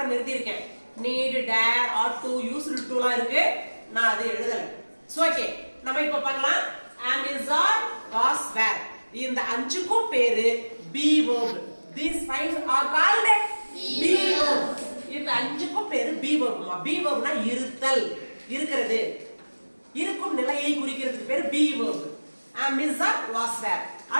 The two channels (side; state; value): both; inverted; correlation -1.00